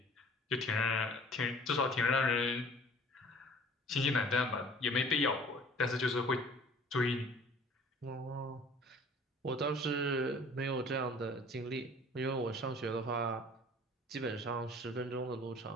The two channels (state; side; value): normal; both; correlation 0.49